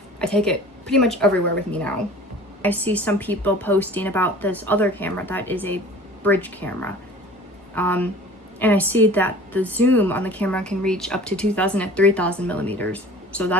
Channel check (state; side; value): normal; both; correlation 0.44